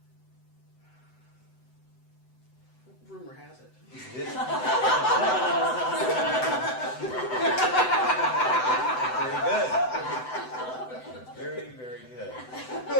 Rumor has it. Is this? Very good. Very, very good.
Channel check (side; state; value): right; late; 7.9 ms